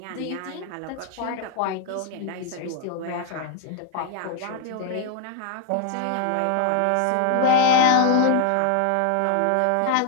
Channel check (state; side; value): different; both; correlation 0.00